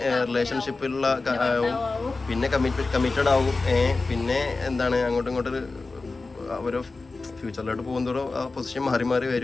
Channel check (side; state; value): right; quieter; 3.7 dB